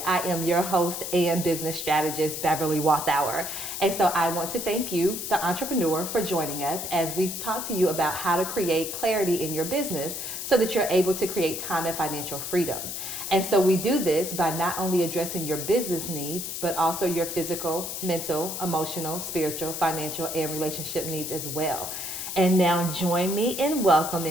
I am your host and business strategist, Beverly Wathauer. And so I want to thank you, the entrepreneur, for joining us as we talk to you about how to create clarity in your business so that you're able to create time and financial freedom. And so we do this by not only addressing your business needs, but also your physical, mental, emotional, spiritual, financial, and relationship needs as well. And now join me in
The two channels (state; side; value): noise; left; hiss, 5 dB below the sound